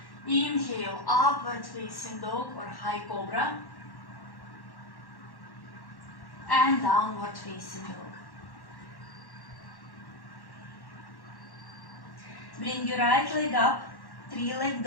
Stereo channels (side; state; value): right; late; 1.1 ms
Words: Inhale, upward facing dog or high cobra. And downward facing dog. Bring your right leg up, 3-leg